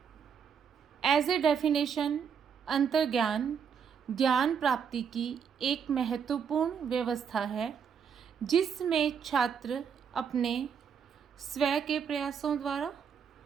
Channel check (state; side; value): quieter; left; 7.1 dB